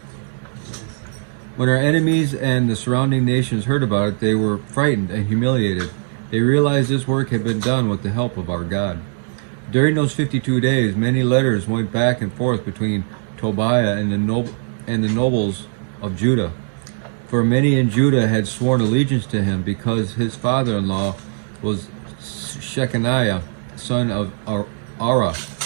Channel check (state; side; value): silent; left; 66 dB below the other